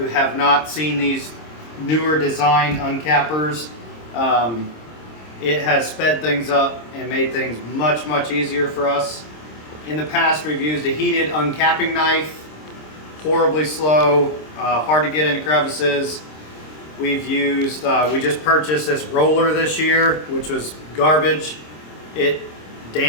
have not seen these newer design uncappers, it has sped things up and made things much easier for us. In the past we've used a heated uncapping knife, horribly slow, hard to get into crevices. We've used, we just purchased this roller this year, which was garbage. It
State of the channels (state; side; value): late; right; 26 ms